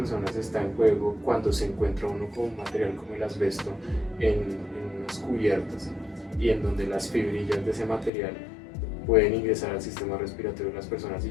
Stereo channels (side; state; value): right; drops out; at 8.1 s